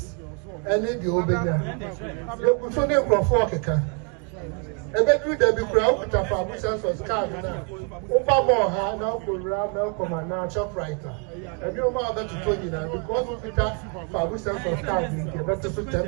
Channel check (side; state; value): left; quieter; 37.0 dB